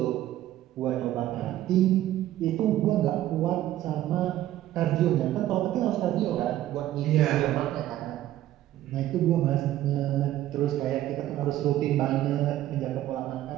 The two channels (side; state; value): left; quieter; 13.6 dB